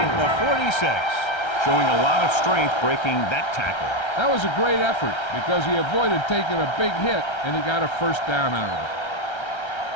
46. Showing a lot of strength breaking that tackle. That was a great effort because he avoided taking a big hit and he got a first down out of it.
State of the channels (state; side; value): late; right; 1.3 ms